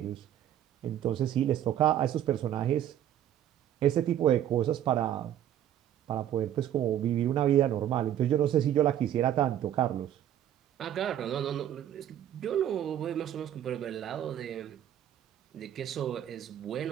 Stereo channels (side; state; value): left; quieter; 11.1 dB